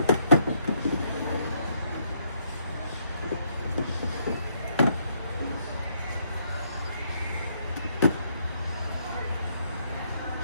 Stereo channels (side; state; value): both; inverted; correlation -0.72